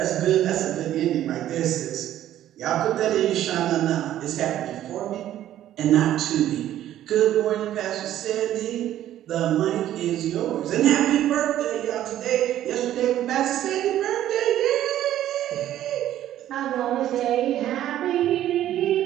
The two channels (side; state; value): left; quieter; 12.4 dB